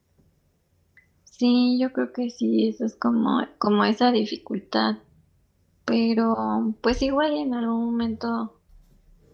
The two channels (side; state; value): both; identical; correlation 1.00